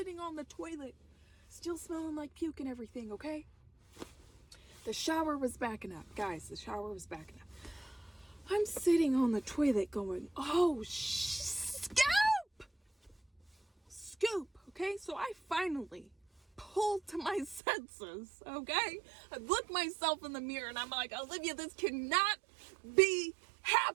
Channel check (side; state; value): left; drops out; at 17.6 s